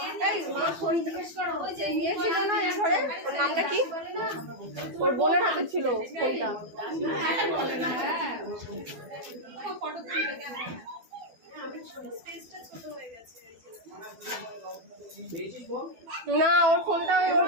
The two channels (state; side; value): late; left; 12 ms